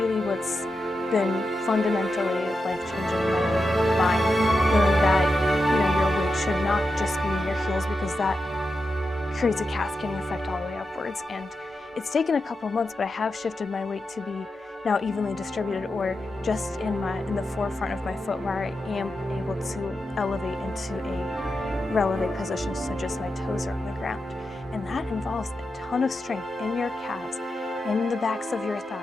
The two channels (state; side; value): normal; both; correlation 0.89